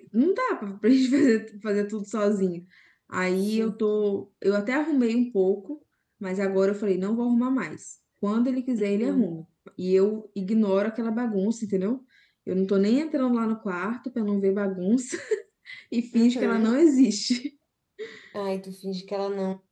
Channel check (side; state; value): both; identical; correlation 1.00